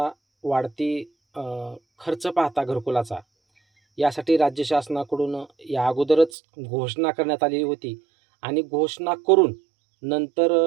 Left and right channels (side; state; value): left; drops out; at 6.3 s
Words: वाढती खर्च पाहता घरकुलाचा, यासाठी राज्य शासनाकडून या अगोदरच घोषणा करण्यात आलेली होती आणि घोषणा करून